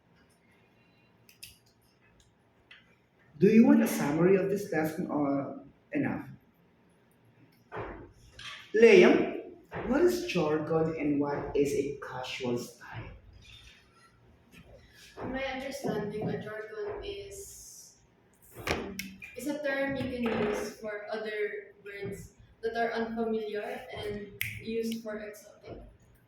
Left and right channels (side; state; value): both; identical; correlation 1.00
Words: do you want a summary of this lesson or enough? Liam, what is jargon and what is a casual style? In my understanding, a jargon is a term you can use for other words that are unfamiliar and used for exotic